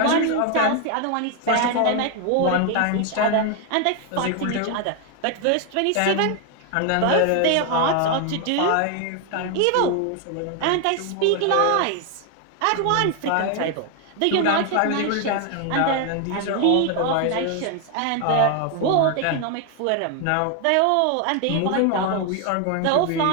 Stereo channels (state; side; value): different; both; correlation 0.01